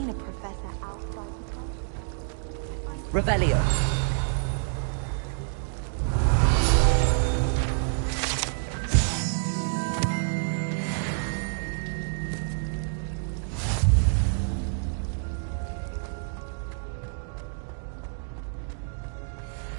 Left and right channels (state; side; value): silent; left; digital silence